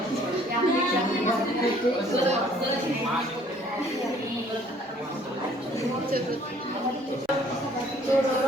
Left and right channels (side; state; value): both; normal; correlation 0.58